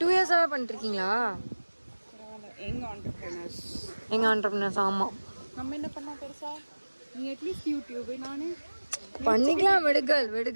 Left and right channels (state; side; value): inverted; both; correlation -1.00